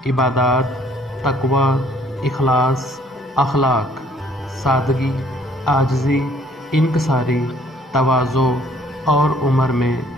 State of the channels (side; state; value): both; normal; correlation 0.60